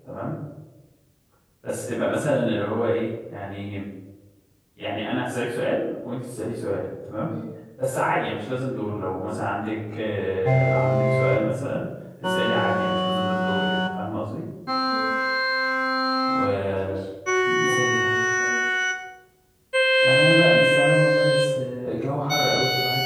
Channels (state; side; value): identical; both; correlation 1.00